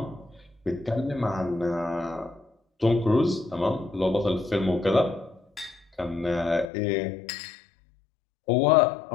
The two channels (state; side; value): drops out; right; at 6.7 s